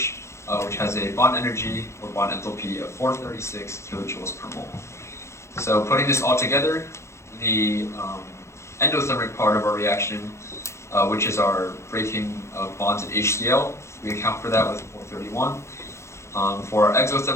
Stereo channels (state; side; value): late; right; 0.13 ms